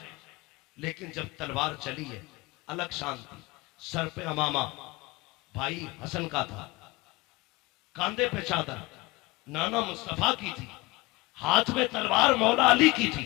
लेकिन जब तलवार चली है अलग शांति। सर पे अमामा भाई हसन का था, कांधे पे चादर, नाना मुस्तफा की थी, हाथ में तलवार मौला अली की थी,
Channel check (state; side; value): quieter; right; 22.0 dB